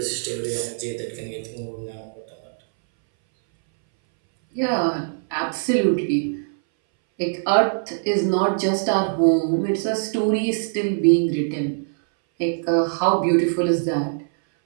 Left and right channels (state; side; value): silent; left; 61 dB below the other